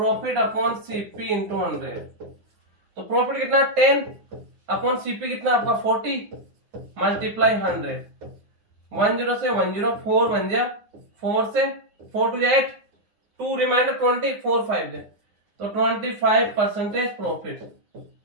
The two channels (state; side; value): late; left; 9.6 ms